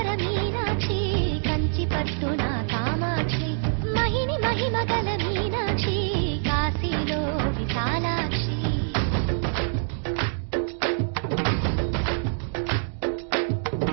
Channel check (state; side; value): silent; left; digital silence